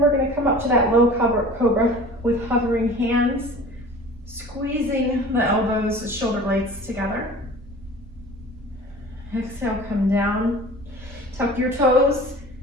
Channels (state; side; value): noise; right; rumble, 20 dB below the sound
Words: we're gonna come up to that low cobra with hovering hands, squeezing the elbows, the shoulder blades together. Exhale, come down. Tuck your toes,